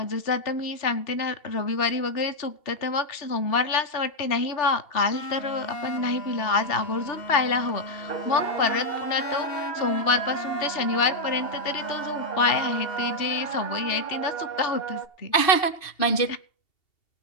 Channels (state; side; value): late; right; 2.7 ms